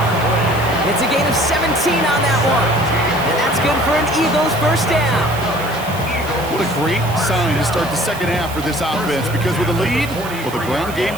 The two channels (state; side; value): noise; right; hiss, 16 dB below the sound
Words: It's a gain of 17 on that one. And that's good for an Eagles first down. What a great sign to start the second half for this offense, because with a lead, well, the ground game